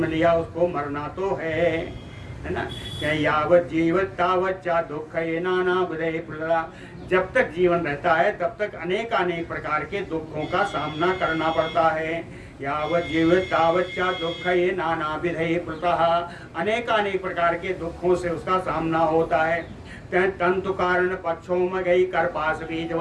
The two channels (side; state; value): both; identical; correlation 1.00